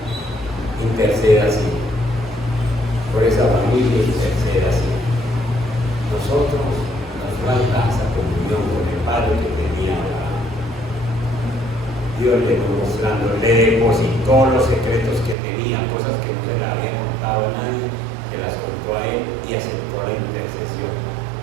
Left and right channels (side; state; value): left; drops out; at 15.4 s